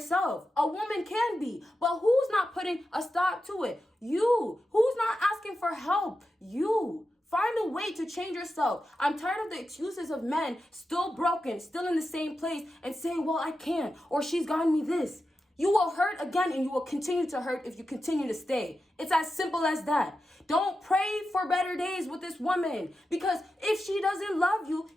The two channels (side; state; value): both; normal; correlation 0.90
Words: A woman can be, but who's not putting a stop to it? You. Who's not asking for help? You. Find a way to change yourself. I'm tired of the excuses of men still broken, still in the same place and saying, well, I can't, or she's gotten me this. You will hurt again, and you will continue to hurt if you continue to stay. It's as simple as that. Don't pray for better days with this woman, because if she doesn't love you,